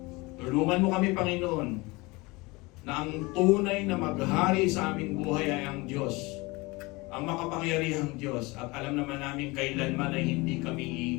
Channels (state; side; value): quieter; right; 24.0 dB